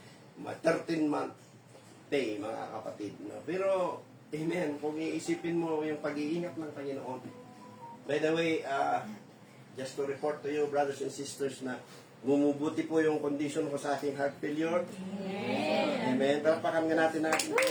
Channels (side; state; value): both; identical; correlation 1.00